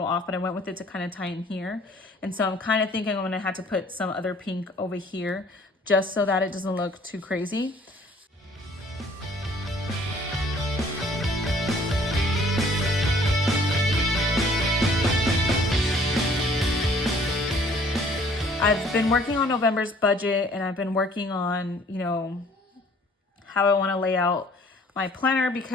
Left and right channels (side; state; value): both; normal; correlation 0.56